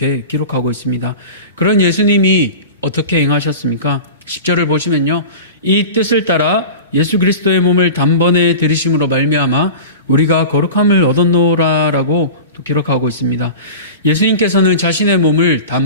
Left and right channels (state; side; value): inverted; both; correlation -0.33